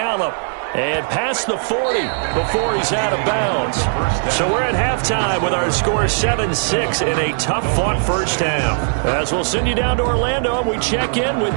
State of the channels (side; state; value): left; silent; 59 dB below the other